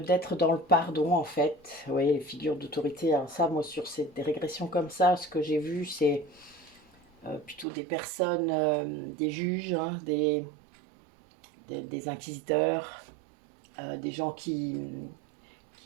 dans le pardon en fait. Vous voyez, les figures d'autorité. Alors ça, moi sur des régressions comme ça, ce que j'ai vu, c'est plutôt des personnes, des juges, hein, des inquisiteurs, des gens qui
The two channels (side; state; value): left; drops out; at 7.7 s